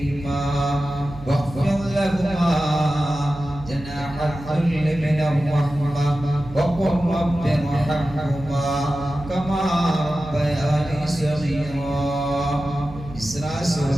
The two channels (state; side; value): noise; right; hum, 15 dB below the sound